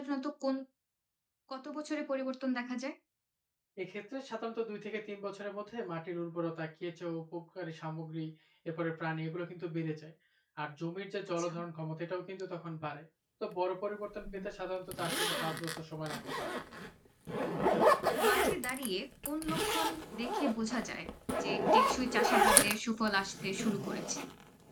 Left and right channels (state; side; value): identical; both; correlation 1.00